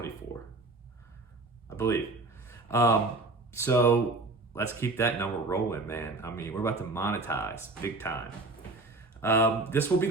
I believe. So let's keep that number rolling, man. I mean, we're about to monetize big time. This will be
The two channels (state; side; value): quieter; left; 3.2 dB